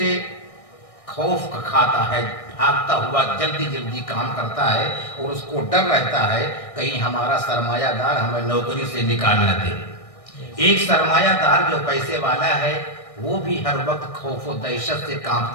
خوف کھاتا ہے، بھاگتا ہوا جلدی جلدی کام کرتا ہے اور اس کو ڈر رہتا ہے کہیں ہمارا سرمایہ دار ہمیں نوکری سے نکال نہ دے۔ ایک سرمایہ دار جو پیسے والا ہے وہ بھی ہر وقت خوف و دہشت سے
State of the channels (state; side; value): late; right; 1.6 ms